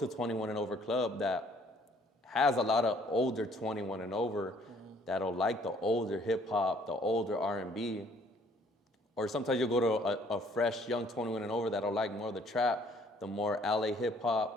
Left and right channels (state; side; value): normal; both; correlation 0.60